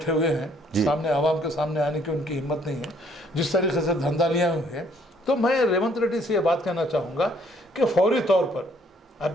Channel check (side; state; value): both; normal; correlation 0.64